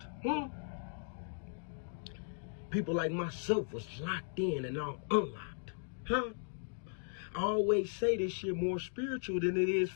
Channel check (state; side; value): silent; right; digital silence